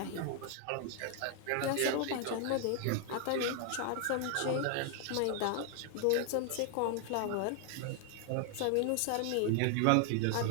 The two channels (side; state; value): both; different; correlation 0.00